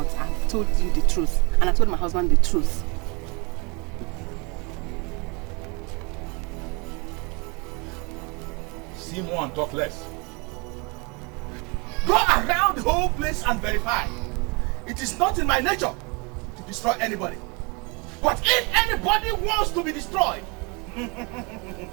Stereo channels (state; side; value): quieter; left; 29.8 dB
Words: I've told you the truth. And I told my husband the truth. See more and talk less. Go around the whole place and verify. It is not in my nature to destroy anybody. But if anybody wants to be destroyed,